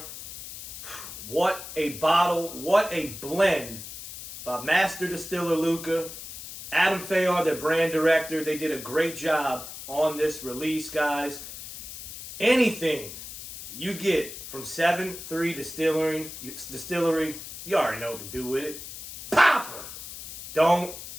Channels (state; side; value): noise; left; hiss, 11 dB below the sound